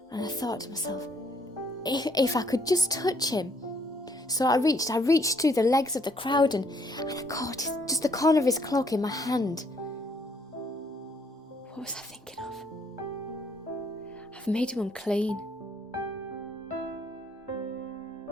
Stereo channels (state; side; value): normal; both; correlation 0.67